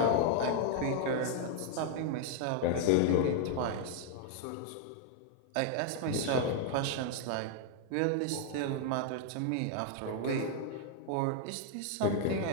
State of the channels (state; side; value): different; both; correlation 0.00